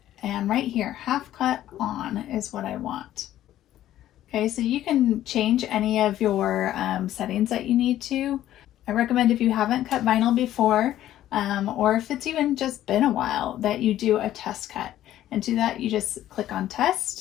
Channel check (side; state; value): right; quieter; 12.9 dB